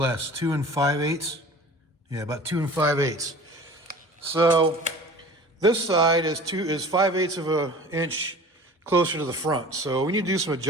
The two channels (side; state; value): both; normal; correlation 0.42